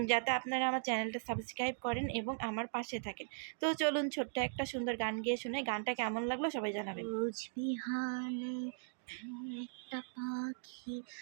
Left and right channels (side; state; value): left; silent; digital silence